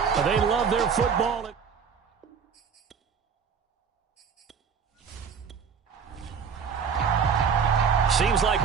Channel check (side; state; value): left; quieter; 6.4 dB